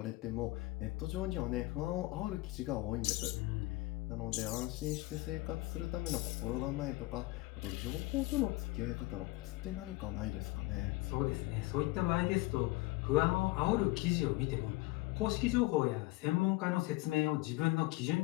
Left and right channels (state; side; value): quieter; right; 20.5 dB